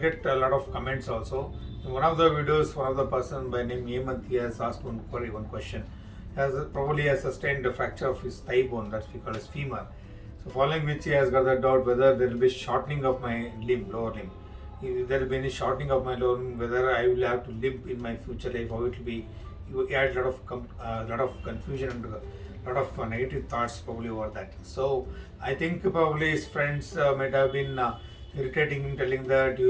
a lot of comments also. In one of the videos, one of the person by name Hemant has asked one question. Probably has sustained a fracture of his thigh bone, that we call as femur. So following which he has got the doubt whether there will be shortening of my lower limb. If there will be any shortening of my lower limb, whether I will have to limp in my future life, how it will be. He had a lot of confusion and a lot of negative thoughts probably over that. So I think probably his friends might have been irritating him, telling that you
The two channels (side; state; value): both; identical; correlation 1.00